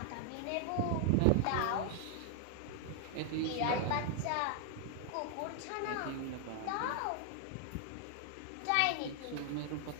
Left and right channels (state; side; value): different; both; correlation 0.00